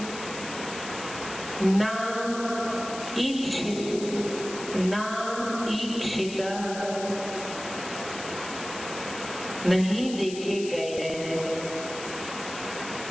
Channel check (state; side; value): noise; left; hiss, 11 dB below the sound